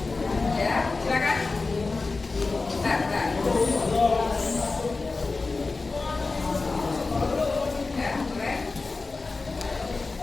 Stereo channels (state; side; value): quieter; right; 3.8 dB